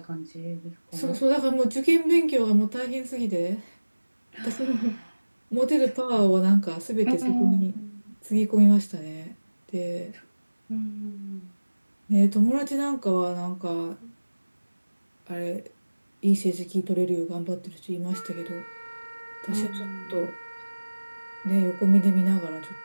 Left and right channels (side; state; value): both; inverted; correlation -1.00